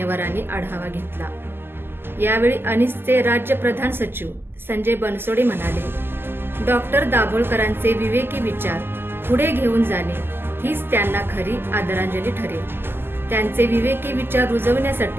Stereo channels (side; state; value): left; late; 0.11 ms